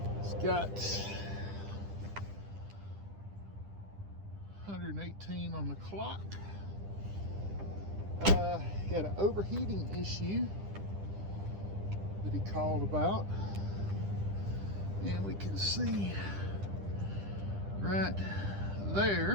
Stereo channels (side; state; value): left; late; 10 ms